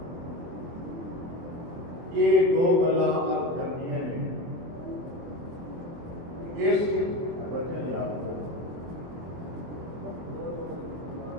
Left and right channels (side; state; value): left; late; 24 ms